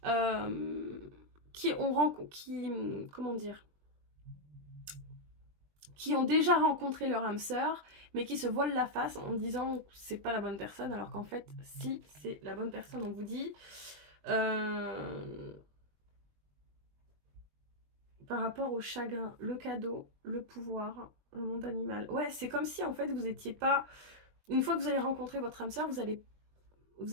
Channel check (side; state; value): left; late; 20 ms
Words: comment dire, qui ont déjà rencontré leur âme sœur, mais qui se voilent la face en disant que c'est pas la bonne personne, alors qu'en fait, si, c'est la bonne personne. On vous dit... par rapport au chagrin, le cadeau, le pouvoir, le monde animal. Ouais, c'est comme si en fait vous étiez pas... Une fois que vous allez rencontrer votre âme sœur, vous allez